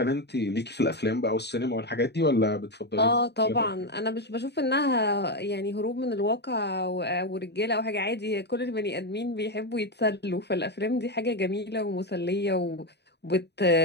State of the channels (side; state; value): right; late; 0.49 ms